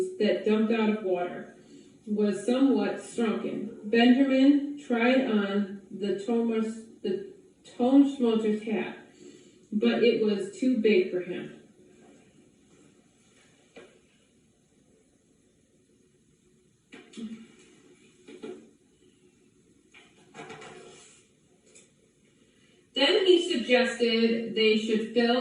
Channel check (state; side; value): identical; both; correlation 1.00